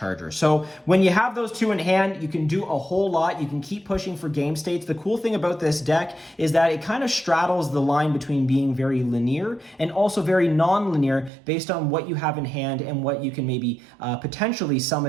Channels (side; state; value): left; drops out; at 11.3 s